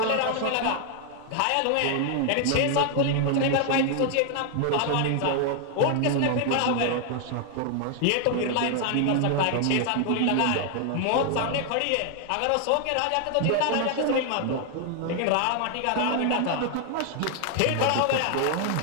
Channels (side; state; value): both; different; correlation 0.00